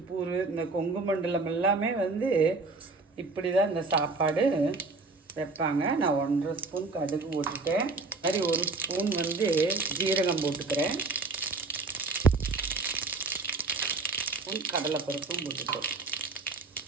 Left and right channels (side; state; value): left; quieter; 3.7 dB